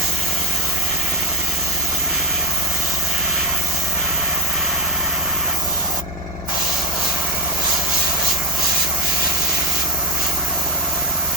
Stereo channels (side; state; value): both; normal; correlation 0.14